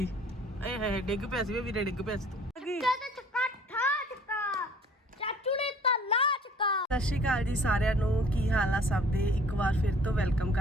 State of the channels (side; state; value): both; normal; correlation 0.53